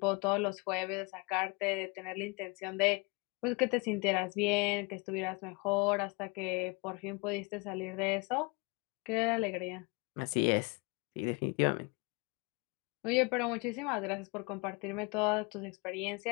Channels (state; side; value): quieter; right; 29.3 dB